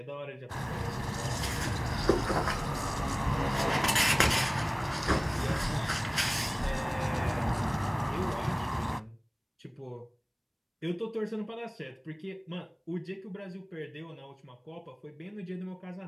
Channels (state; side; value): identical; both; correlation 1.00